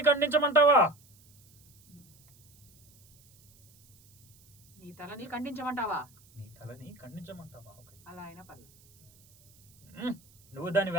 ఖండించమంటావా? నీ తలని ఖండించమంటావా? నీ తలని ఖండించమంటావా? ఓకే, అలా అయినా పర్లేదు. నువ్వు దాన్ని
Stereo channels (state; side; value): noise; right; hiss, 28 dB below the sound